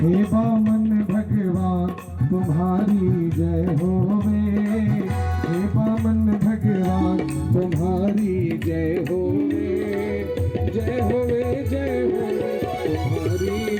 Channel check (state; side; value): identical; both; correlation 1.00